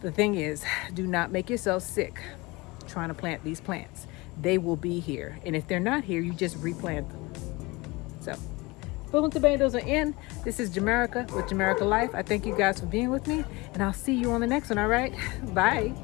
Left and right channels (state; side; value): quieter; right; 23.8 dB